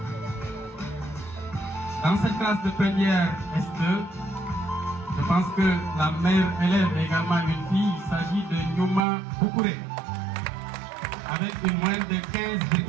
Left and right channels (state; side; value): drops out; left; at 9.1 s